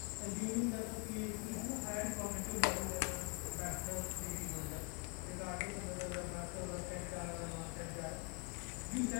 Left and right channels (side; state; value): right; quieter; 29.3 dB